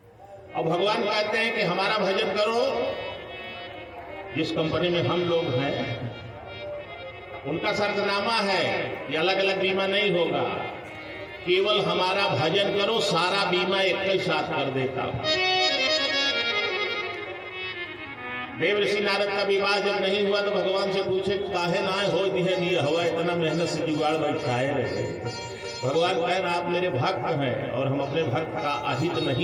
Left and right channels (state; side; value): identical; both; correlation 1.00